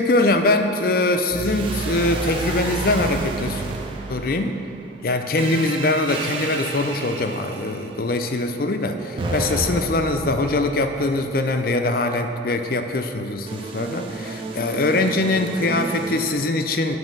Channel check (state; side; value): normal; both; correlation 0.31